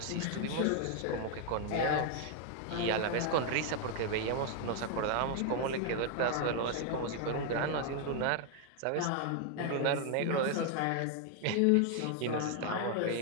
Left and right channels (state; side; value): different; both; correlation 0.00